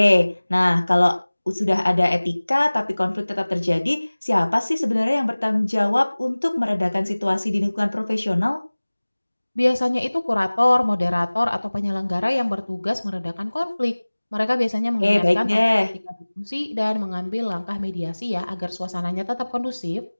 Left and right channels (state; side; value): inverted; both; correlation -1.00